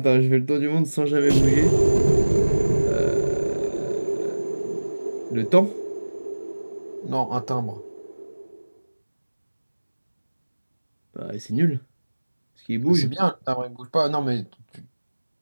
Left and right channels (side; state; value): both; inverted; correlation -1.00